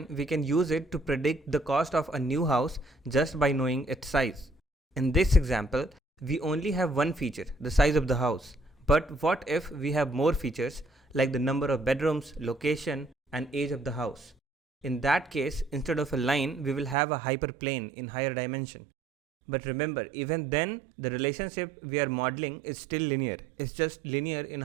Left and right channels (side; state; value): left; drops out; at 16.9 s